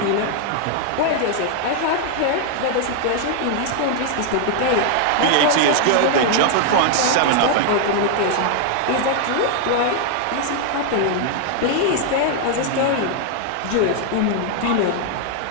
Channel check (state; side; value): different; both; correlation 0.00